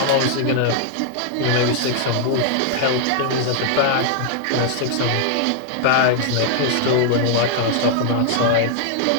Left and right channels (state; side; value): different; both; correlation -0.01